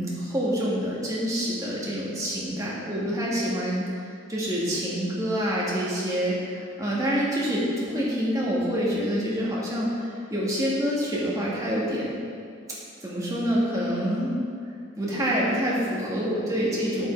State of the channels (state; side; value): normal; both; correlation 0.57